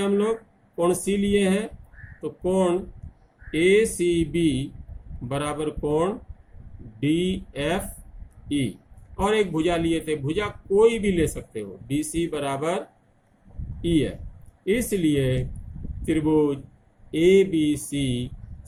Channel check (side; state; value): both; identical; correlation 1.00